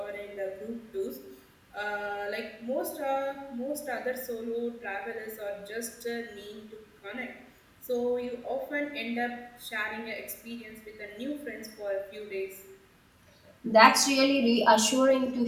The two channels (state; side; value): identical; both; correlation 1.00